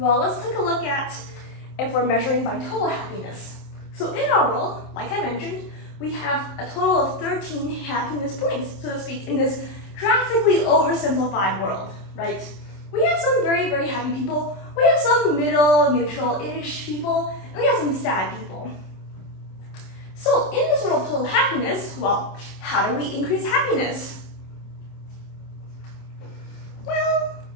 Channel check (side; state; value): right; late; 27 ms